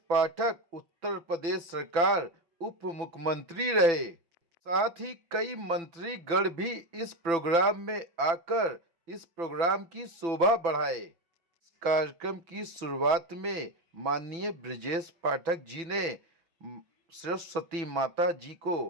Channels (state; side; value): late; left; 5.9 ms